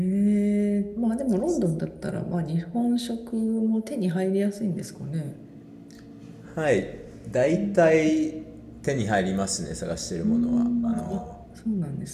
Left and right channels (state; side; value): identical; both; correlation 1.00